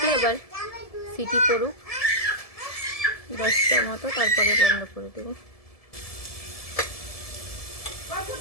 এবার সিটি পড়ুক 10টার মতো, তারপরে বন্ধ করে দেবো।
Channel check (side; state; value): right; late; 1.7 ms